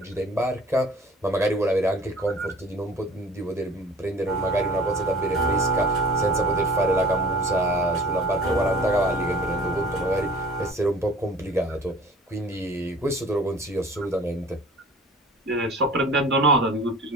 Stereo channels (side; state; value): both; normal; correlation 0.46